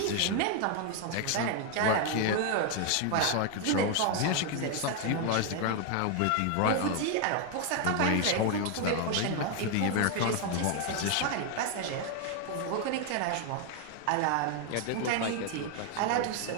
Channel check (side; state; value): both; different; correlation 0.01